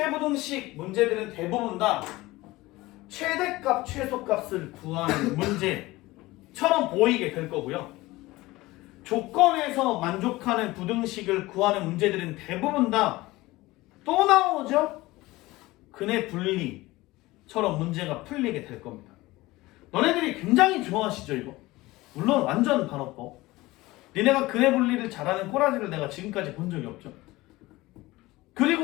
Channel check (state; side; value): quieter; right; 19.5 dB